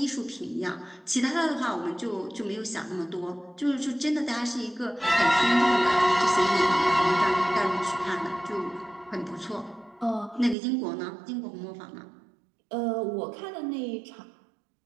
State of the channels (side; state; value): left; drops out; at 10.6 s